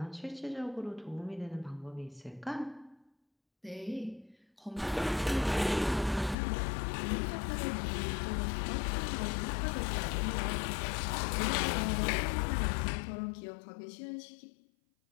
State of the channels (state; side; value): drops out; right; at 6.4 s